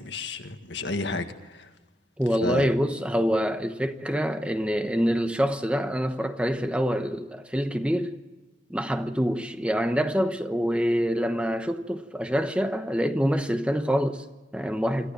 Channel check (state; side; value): normal; both; correlation 0.89